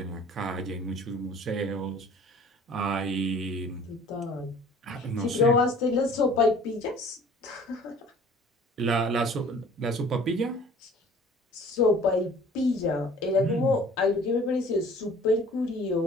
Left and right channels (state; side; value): normal; both; correlation 0.49